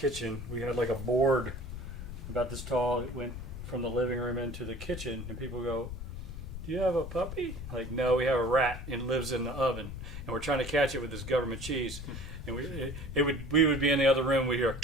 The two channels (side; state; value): left; noise; rumble, 9 dB below the sound